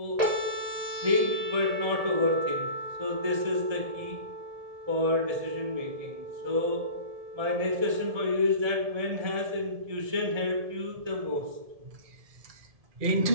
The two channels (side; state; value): left; late; 1.7 ms